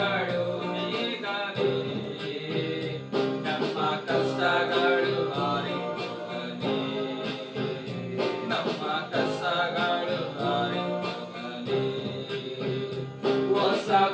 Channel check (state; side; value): identical; both; correlation 1.00